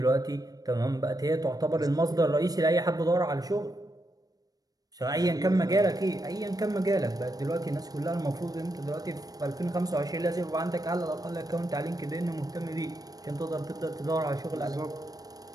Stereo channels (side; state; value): left; late; 0.18 ms